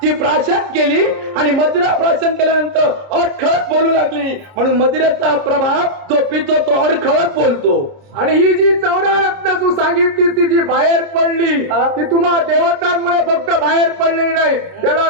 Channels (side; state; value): left; late; 29 ms